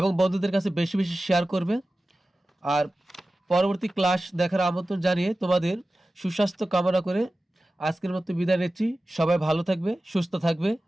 বন্ধুদের কাছে বেশি বেশি শেয়ার করবে। আর পরবর্তী ক্লাস দেখার আমন্ত্রণ জানিয়ে তোমাদের সুস্বাস্থ্য কামনা করে আজকের মতো বিদায় নিচ্ছি। সবাই ভালো থাকবে, সুস্থ থাকবে।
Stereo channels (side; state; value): both; normal; correlation 0.95